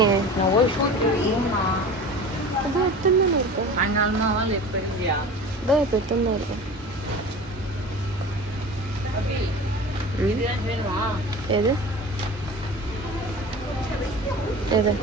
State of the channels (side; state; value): both; normal; correlation 0.37